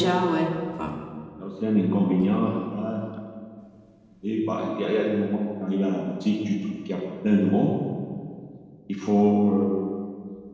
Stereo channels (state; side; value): identical; both; correlation 1.00